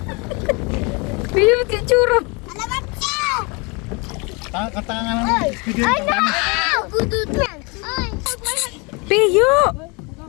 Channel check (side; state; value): right; quieter; 29.8 dB